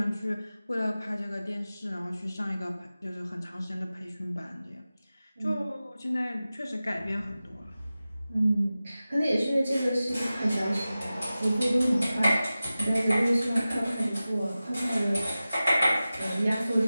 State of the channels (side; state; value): both; inverted; correlation -0.95